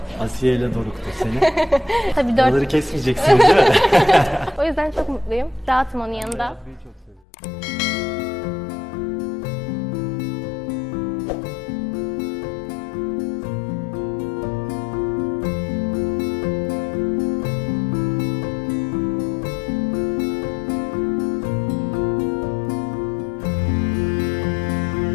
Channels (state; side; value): drops out; right; at 7.2 s